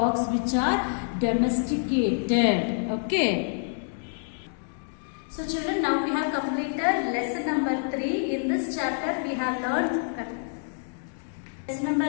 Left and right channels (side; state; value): right; silent; digital silence